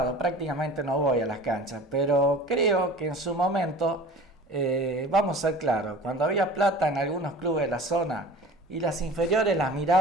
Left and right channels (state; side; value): normal; both; correlation 0.41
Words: prácticamente no voy a las canchas, pero creo que en su momento, vamos a ser claros, cuando había plata en algunos clubes de la zona y las inferiores las